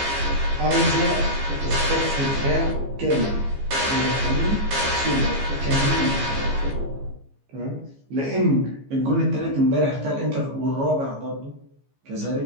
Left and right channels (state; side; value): late; left; 15 ms